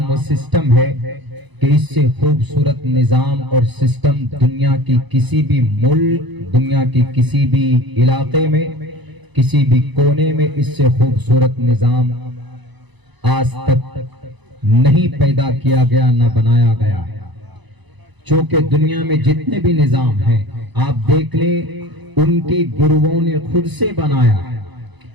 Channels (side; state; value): left; late; 1.0 ms